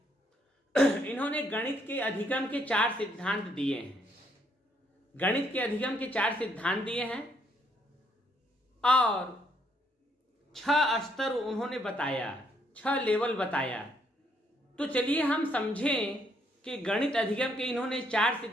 इन्होंने गणित के अधिगम के 4 सिद्धांत दिए हैं। गणित के अधिगम के 4 सिद्धांत दिए हैं और 6 स्तर उन्होंने बताया, 6 लेवल बताया। तो चलिए हम समझें कि गणित अधिगम के इन्होंने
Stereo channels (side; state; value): both; normal; correlation 0.71